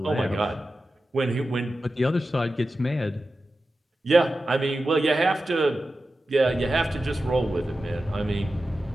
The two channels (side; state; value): both; normal; correlation 0.93